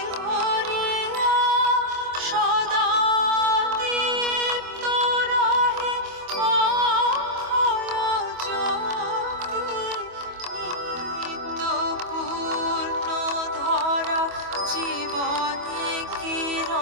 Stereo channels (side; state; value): left; late; 25 ms